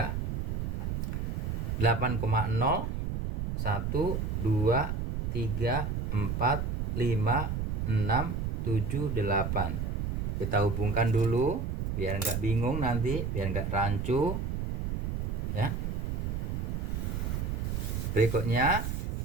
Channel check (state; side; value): noise; right; rumble, 1 dB below the sound